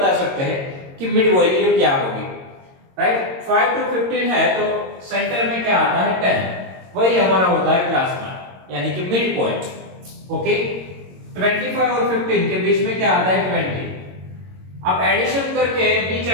सकते हैं कि मिड वैल्यू क्या होगी. राइट, 5 to 15 है तो सेंटर में क्या आता है 10, वही हमारा होता है क्लास मार्क, यानी कि मिड पॉइंट. ओके, 25 और 15 के बीच में क्या आता है 20. आप एडिशन करके भी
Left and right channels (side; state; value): left; late; 22 ms